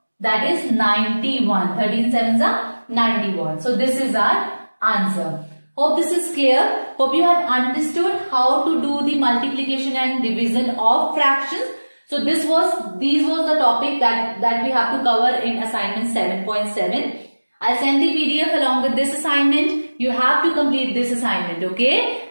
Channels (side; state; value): both; inverted; correlation -1.00